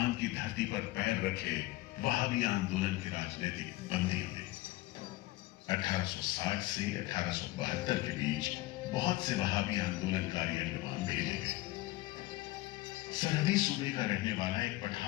की धरती पर पैर रखे वहाबी आंदोलन के राजनीतिक बंदियों ने 1860 से 1872 के बीच बहुत से वहाबी आंदोलनकारी अंडमान भेजे गए। सरहदी सूबे का रहने वाला एक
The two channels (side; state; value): right; quieter; 18.3 dB